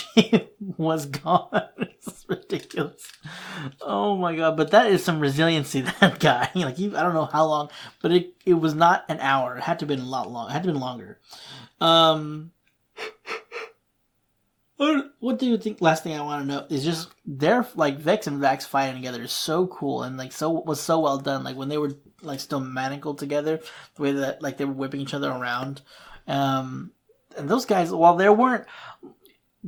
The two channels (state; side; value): identical; both; correlation 1.00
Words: was gone is ridiculous. Oh my god, but that is some resiliency, that guy. Like, I don't know how long, but it was not an hour. It had to have been a lot long. It had to have been longer. What do you think? Last thing I want to know is just their like Vex and Vax fighting together is so cool, and like was so well done. Like when they were like still manacled together, the way that like they were whipping each other around. And those guys, while they weren't